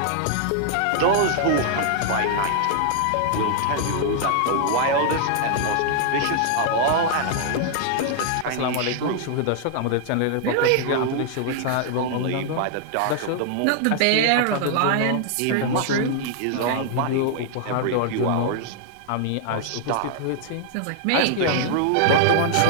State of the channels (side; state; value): both; different; correlation 0.00